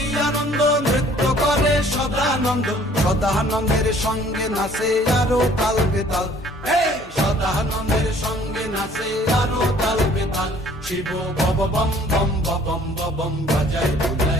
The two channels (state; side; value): normal; both; correlation 0.56